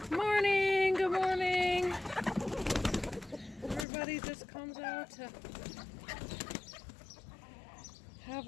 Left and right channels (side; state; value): right; drops out; at 3.9 s